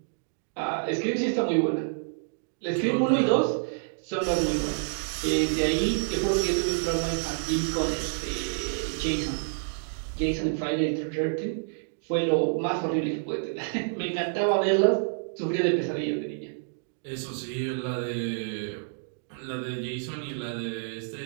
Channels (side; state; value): left; silent; digital silence